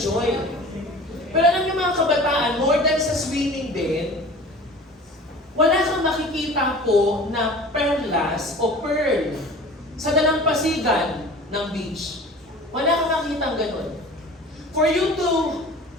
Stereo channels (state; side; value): normal; both; correlation 0.41